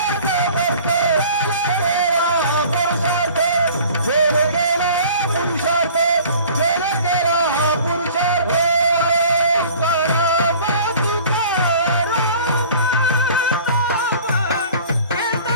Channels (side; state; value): both; inverted; correlation -0.47